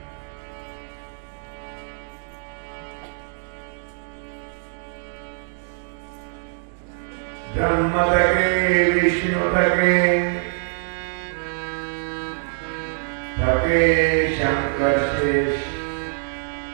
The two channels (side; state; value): left; silent; digital silence